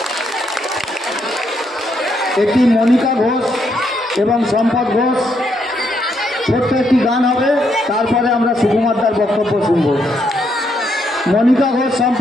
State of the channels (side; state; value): both; normal; correlation 0.76